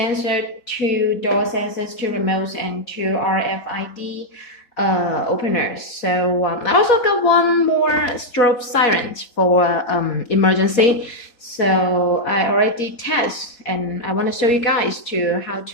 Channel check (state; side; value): late; right; 4.3 ms